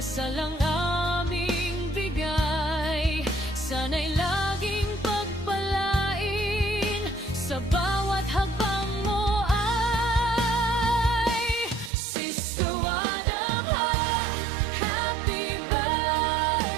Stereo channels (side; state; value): left; drops out; at 11.9 s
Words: ang aming bigay, sana'y laging pagpalain sa bawat hakbang mo ay Sister Wadamha. Happy